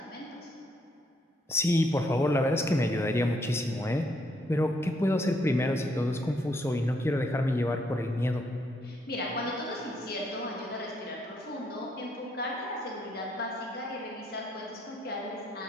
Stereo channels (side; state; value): both; normal; correlation 0.72